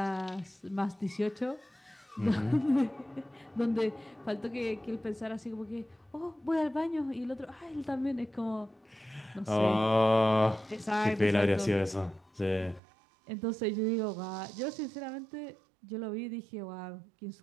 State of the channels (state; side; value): drops out; left; at 12.8 s